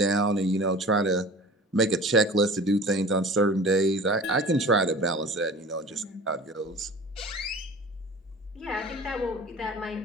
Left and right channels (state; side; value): normal; both; correlation 0.41